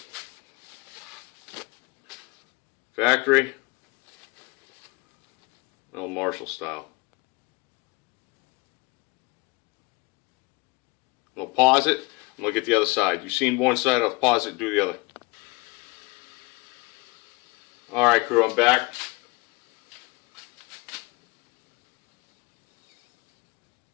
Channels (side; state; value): right; quieter; 25.5 dB